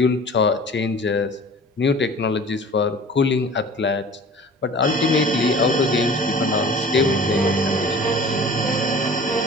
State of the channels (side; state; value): both; normal; correlation 0.44